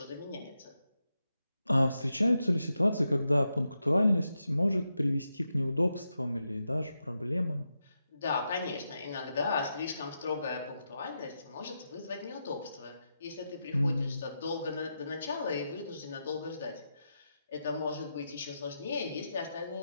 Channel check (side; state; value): both; inverted; correlation -0.87